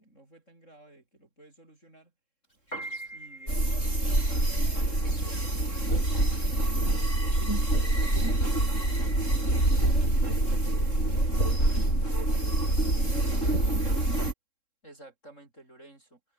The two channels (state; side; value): late; right; 3.7 ms